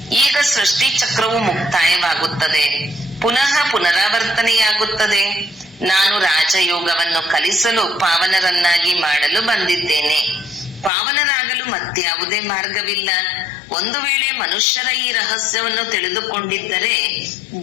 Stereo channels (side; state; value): right; drops out; at 10.9 s